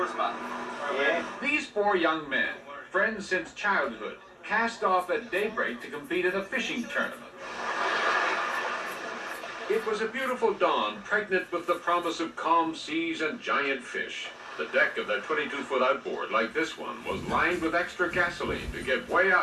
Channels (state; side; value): identical; both; correlation 1.00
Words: spot. These four young men, friends since childhood, cast off at daybreak to compete in a fishing tournament. It was a beautiful dawn, pregnant with the promise of calm seas and giant fish. The deck of their 22-foot outboard, like this one, was lined with extra gasoline to get way